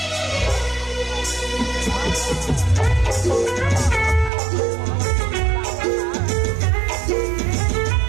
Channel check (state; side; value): drops out; left; at 4.3 s